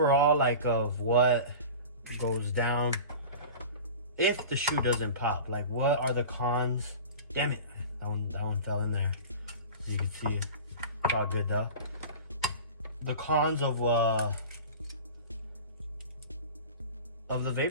of what goes down if the shoe doesn't pop. Like, what are the cons? Damn it, that one fell in there. As you can see, it's all good though. The cons of the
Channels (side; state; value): both; inverted; correlation -0.35